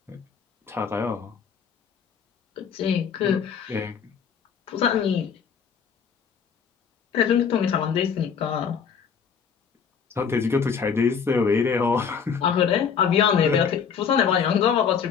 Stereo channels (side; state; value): right; quieter; 6.8 dB